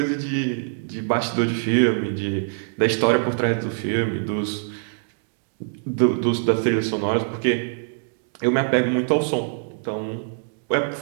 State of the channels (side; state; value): left; silent; digital silence